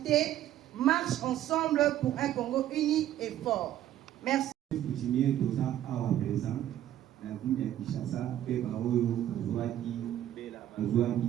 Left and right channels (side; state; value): left; quieter; 12.2 dB